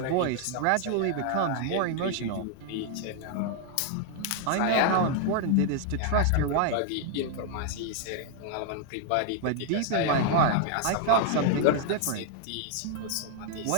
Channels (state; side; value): different; both; correlation 0.00